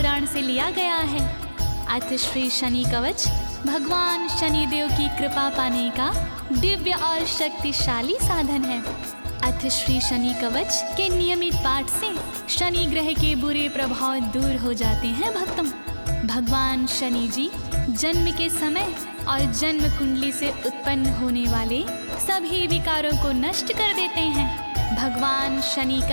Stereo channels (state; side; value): inverted; both; correlation -1.00